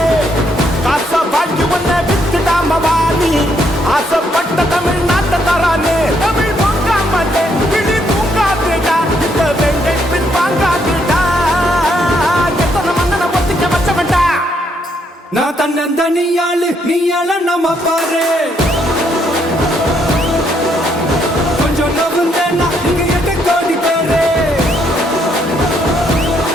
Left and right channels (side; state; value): both; normal; correlation 0.73